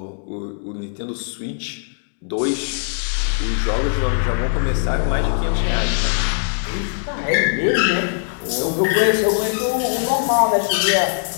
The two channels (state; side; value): silent; right; digital silence